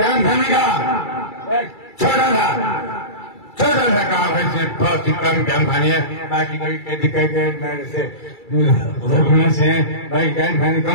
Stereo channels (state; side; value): late; right; 2.3 ms